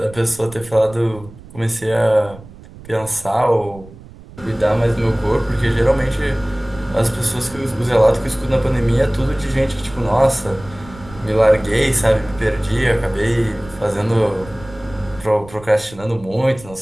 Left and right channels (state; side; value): noise; right; rumble, 19 dB below the sound